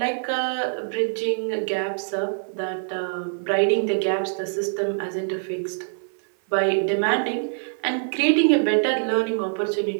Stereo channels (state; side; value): silent; left; 56 dB below the other